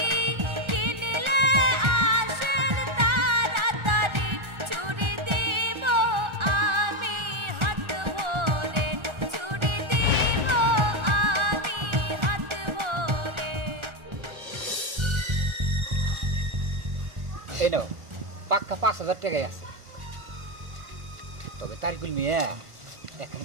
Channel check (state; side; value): late; left; 1.4 ms